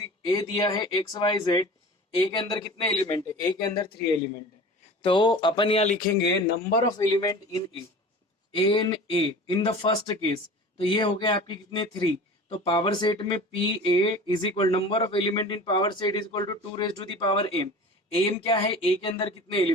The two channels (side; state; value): both; normal; correlation 0.38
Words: ए दिया है एक्स वाई जेड, ए के अंदर कितने एलिमेंट है? ए के अंदर 3 एलिमेंट है। तो अपन यहाँ लिखेंगे number of element in A in the first case. तो ये हो गया आपके कितने 3। तो पावर सेट में P A is equal number of element in power set is equal to 2 raise to the power M. M क्या है? ए के अंदर कितने